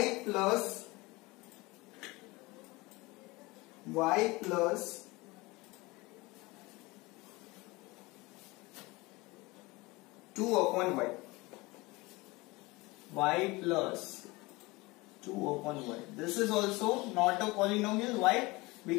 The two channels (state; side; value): quieter; right; 23.0 dB